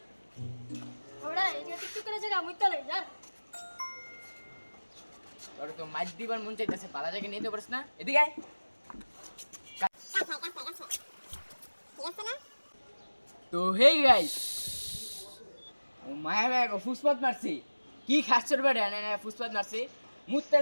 ওরা এই যে টিকটক করে জায়গা মুই তলে যা তোর তো মাছ দিবার মন চাইতেছে পালা জায়গা নিতে পারিস না এদিকে আয় তো হে গাইস ও মায়া মায়া ফুসপাত মারছি কি খাচ্ছর বেড়ে না ফুসপাত মারছি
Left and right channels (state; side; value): inverted; both; correlation -1.00